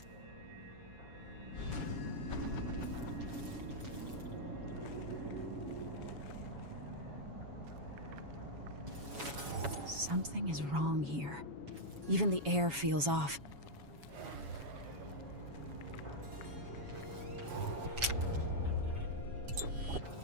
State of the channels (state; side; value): late; left; 7.1 ms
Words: Something is wrong here. Even the air feels off.